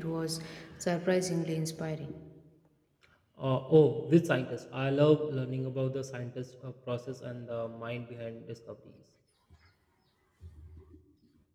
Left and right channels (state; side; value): identical; both; correlation 1.00